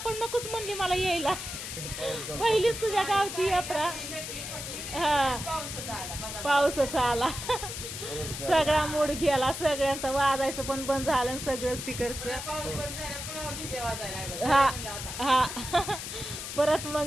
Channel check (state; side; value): noise; left; hiss, 7 dB below the sound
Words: नकोच म्हणली मला यायला. पहिलीच तुझ्या गावची यात्रा. हा, पाऊसच आला. सगळा मूड गेला, सगळ्यांचं वाजायचं पण बंद झालं सगळंच तिकडचं. हा हा परत